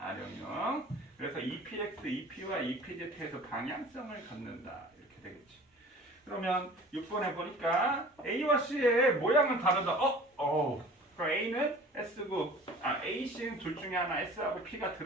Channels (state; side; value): normal; both; correlation 0.44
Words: 그래서 EPX, EP와 EPZ에서 방향성을 갖는다. 이렇게 되겠지. 그러면 6번에 보니까 A와 C의 모양은 다르다. 그럼 A는 S고, A, C는 둘 중에 하나 S하고 P가